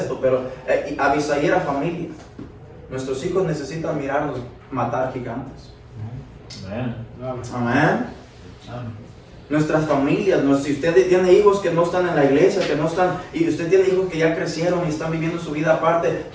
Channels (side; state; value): both; identical; correlation 1.00